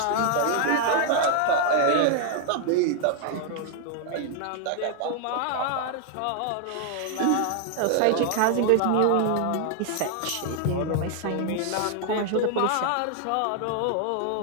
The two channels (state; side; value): different; both; correlation 0.00